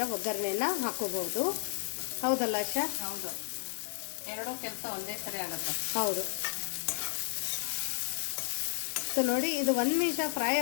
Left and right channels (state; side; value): silent; right; 56 dB below the other